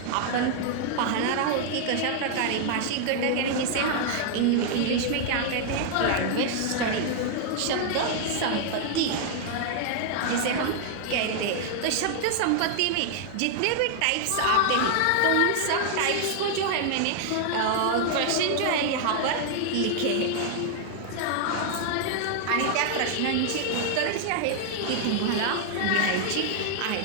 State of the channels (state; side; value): different; both; correlation 0.00